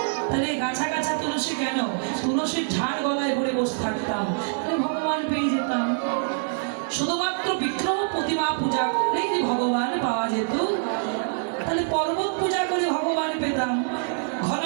তাহলে গাছা গাছা তুলসী কেন তুলসীর ঝাড় গলায় পড়ে বসে থাকতাম তাহলে ভগবান পেয়ে যেতাম। শুধুমাত্র বিগ্রহ প্রতিমা পূজা করলেই যে ভগবান পাওয়া যেত তাহলে পর্বত পূজা করে ভগবান পেতাম। ঘন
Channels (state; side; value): silent; left; 59 dB below the other